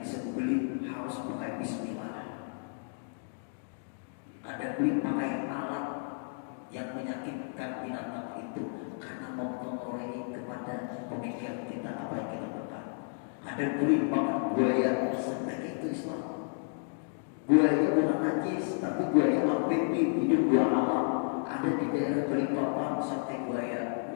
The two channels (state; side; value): silent; right; 56 dB below the other